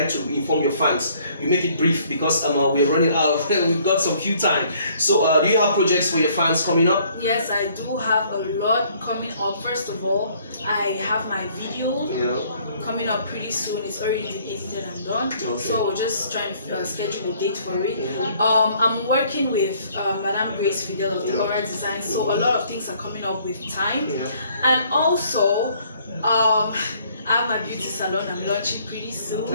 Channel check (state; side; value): inverted; both; correlation -0.61